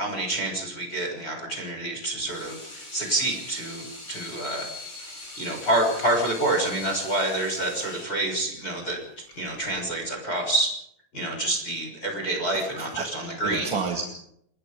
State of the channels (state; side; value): late; right; 17 ms